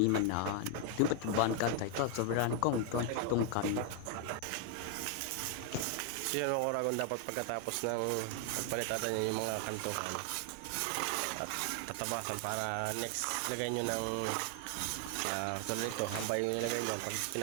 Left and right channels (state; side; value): different; both; correlation 0.00